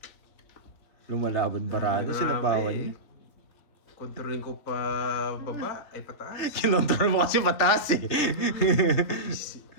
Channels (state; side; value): late; right; 3.7 ms